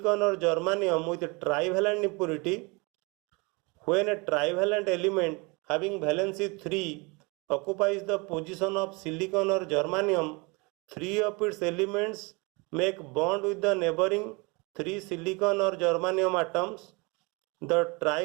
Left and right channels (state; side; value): quieter; left; 28.0 dB